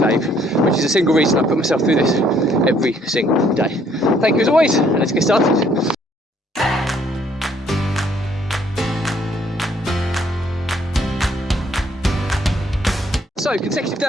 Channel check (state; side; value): normal; both; correlation 0.65